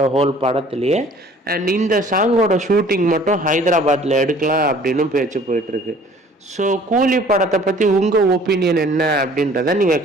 ஹோல் படத்துலேயே. அண்ட் இந்த சாங்கோட ஷூட்டிங் மட்டும் ஹைதராபாத்தில் எடுக்கலாம் அப்படின்னு பேச்சு போயிட்டுருக்கு. ஸோ கூலி படத்தை பற்றி உங்கள் ஒப்பீனியன் என்ன அப்படின்றத நீங்கள்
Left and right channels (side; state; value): both; normal; correlation 0.52